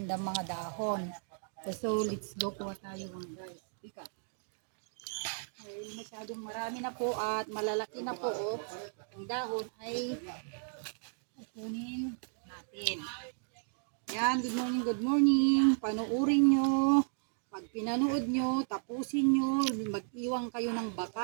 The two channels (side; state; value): left; silent; digital silence